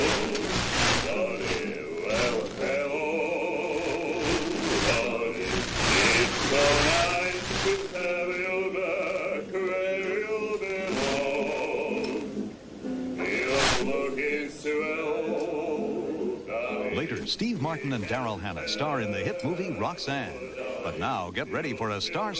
Later, Steve Martin and Daryl Hannah star in the hit movie Roxanne. But now, get ready for a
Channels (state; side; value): identical; both; correlation 1.00